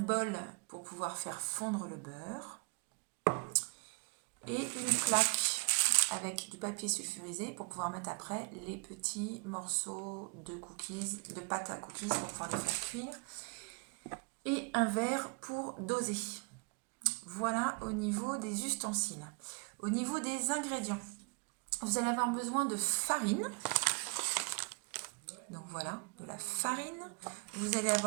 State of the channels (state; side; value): quieter; left; 34.8 dB